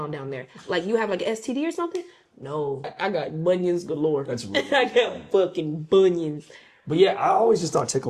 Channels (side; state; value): both; identical; correlation 1.00